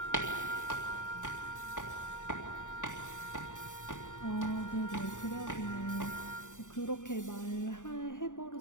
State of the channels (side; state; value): right; late; 0.86 ms